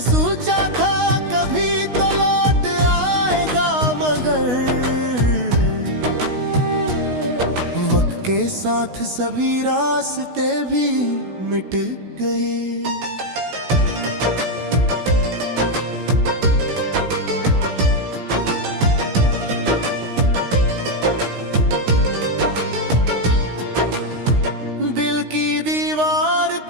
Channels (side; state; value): left; late; 16 ms